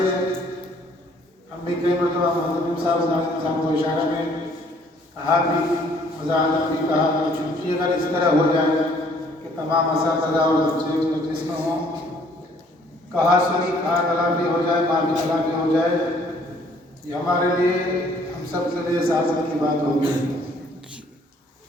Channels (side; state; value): both; normal; correlation 0.61